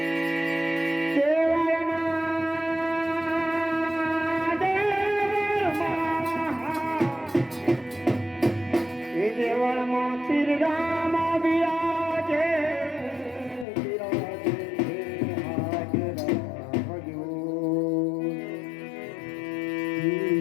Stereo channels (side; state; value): right; drops out; at 13.7 s